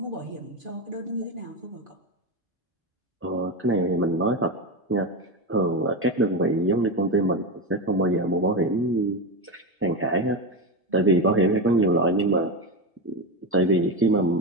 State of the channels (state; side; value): normal; both; correlation 0.16